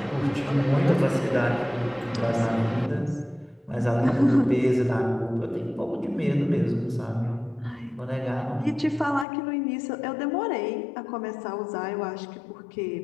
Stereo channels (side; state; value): right; drops out; at 9.2 s